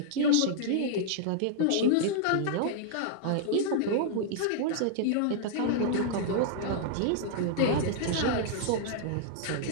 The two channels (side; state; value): both; different; correlation -0.01